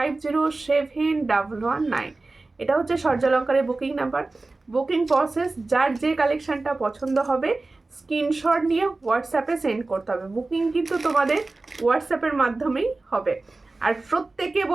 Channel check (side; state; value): left; quieter; 3.3 dB